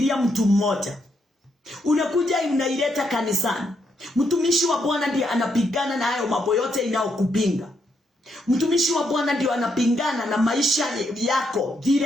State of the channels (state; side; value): normal; both; correlation 0.77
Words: mtu mmoja, unakuja unaileta kanisani. Mtumishi wa Bwana ndiye anapigana na hayo mambo yote inayokupinga. Mtumishi wa Bwana ndiye anapingana na maisha yako